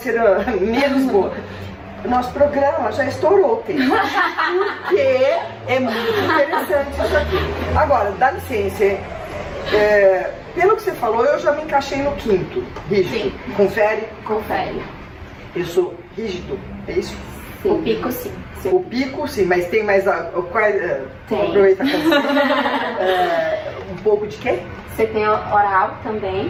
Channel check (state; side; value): identical; both; correlation 1.00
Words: a menos boa. O nosso programa já estourou o tempo. Porque é muito interessante isso aqui. Agora, dá licença. Pelo que você falou, eu já me encaixei no quinto. Rígido. Sim. Confere? Confere. Eu sou rígido, é isso? Sim. O pico, sim. O pico, sim, mas tem mais... Tem. Aproveita um pouco de quê? Você tem oral também,